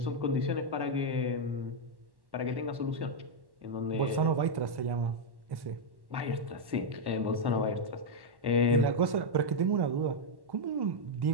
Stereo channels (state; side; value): late; left; 1.1 ms